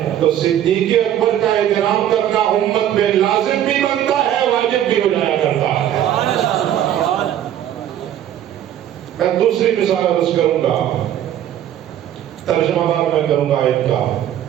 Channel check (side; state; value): left; quieter; 11.1 dB